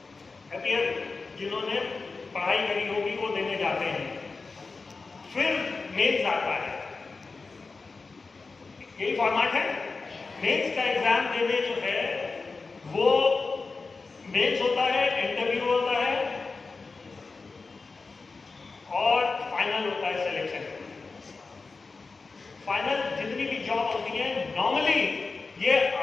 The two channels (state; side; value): quieter; right; 4.1 dB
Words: अपीयर, जिन्होंने पढ़ाई करी होगी वो देने जाते हैं। फिर मेंस आता है, यही फॉर्मेट है। मेंस का एग्जाम देने जो है वो मेंस होता है, इंटरव्यू होता है और फाइनल होता है सिलेक्शन। फाइनल जितनी भी जॉब होती है नॉर्मली ये